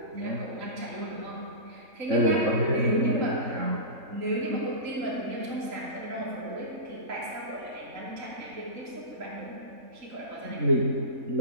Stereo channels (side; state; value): left; late; 3.6 ms